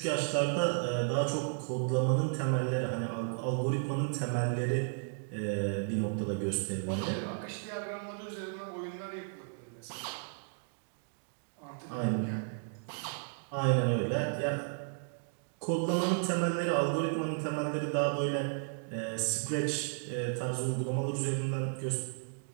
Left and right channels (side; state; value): left; silent; digital silence